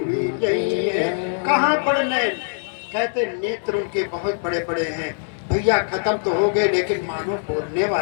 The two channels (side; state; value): right; silent; digital silence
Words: गई है। कहाँ बड़ नैन, कहते नेत्र उनके बहुत बड़े बड़े हैं भैया, खत्म तो हो गए लेकिन मानो बोलने